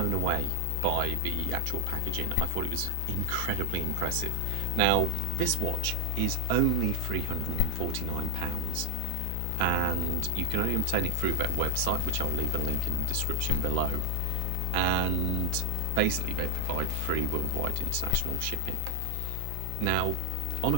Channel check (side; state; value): both; different; correlation 0.00